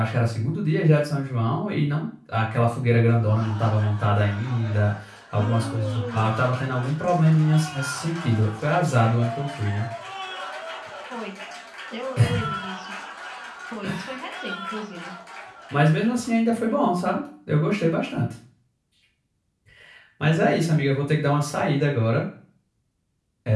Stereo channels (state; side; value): identical; both; correlation 1.00